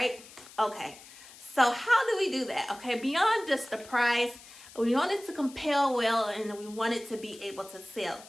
Okay, so how do we do that? Okay, beyond just the price, we want it to compel well, and we want it to be able to sell.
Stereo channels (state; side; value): noise; left; hiss, 19 dB below the sound